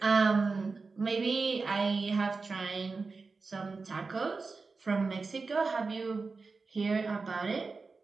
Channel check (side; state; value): left; quieter; 4.2 dB